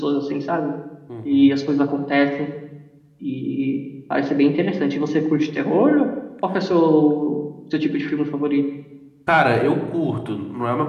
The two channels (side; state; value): both; identical; correlation 1.00